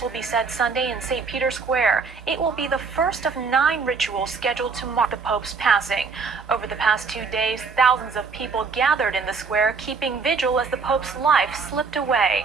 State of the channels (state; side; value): quieter; left; 4.9 dB